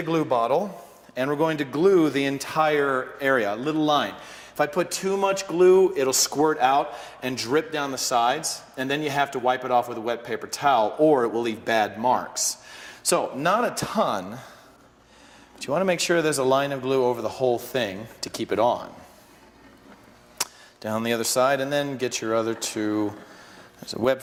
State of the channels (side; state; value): both; identical; correlation 1.00